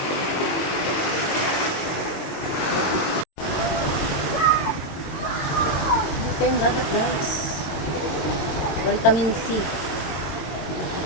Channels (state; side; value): late; right; 22 ms